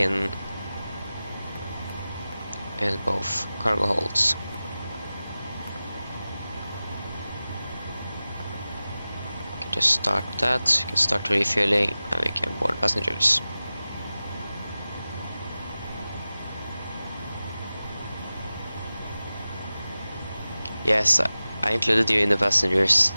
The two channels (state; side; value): inverted; both; correlation -0.96